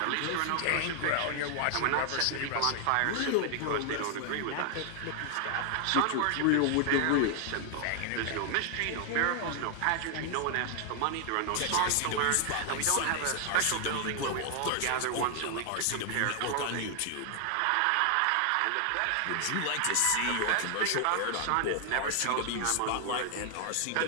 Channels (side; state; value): both; different; correlation 0.00